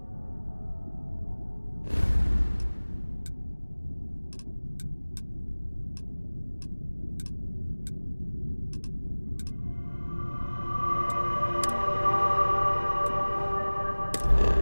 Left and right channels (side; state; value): both; inverted; correlation -1.00